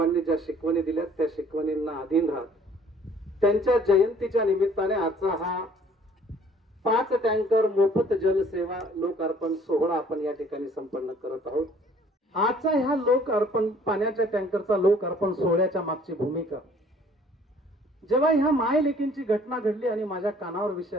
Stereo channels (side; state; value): both; normal; correlation 0.56